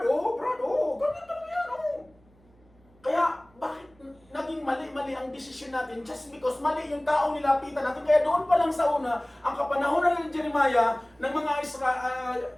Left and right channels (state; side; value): noise; right; hum, 30 dB below the sound